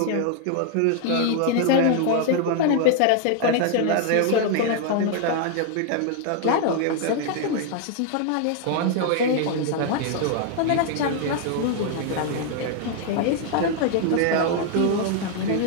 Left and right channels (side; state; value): both; different; correlation 0.00